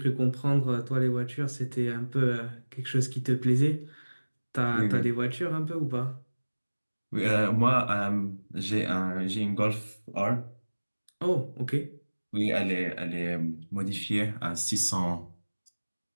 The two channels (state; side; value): inverted; both; correlation -1.00